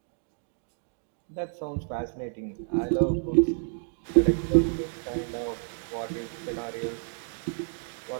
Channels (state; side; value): silent; left; digital silence